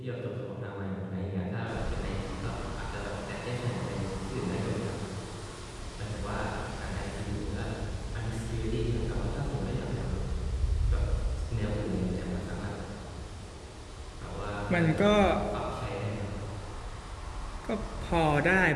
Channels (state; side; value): identical; both; correlation 1.00